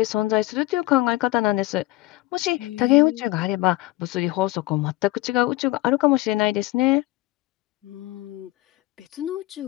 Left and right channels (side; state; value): right; quieter; 18.4 dB